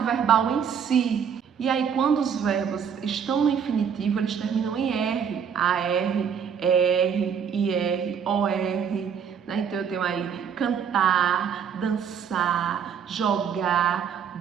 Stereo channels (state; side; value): quieter; left; 7.4 dB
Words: em si. E aí quando os verbos estão no infinitivo, eles terminam em R, AR, ER, IR, OR, né? Então eu tenho aí cantar, dançar, jogar,